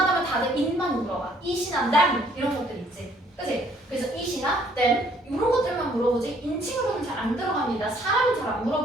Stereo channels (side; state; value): both; normal; correlation 0.63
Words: 다들 it만 물어봐. it이나 them 이런 것들 있지. 그치? 그래서 it이나 them 이런 것들만 물어보지 인칭으로는 잘 안 들어갑니다. 사람은 잘 안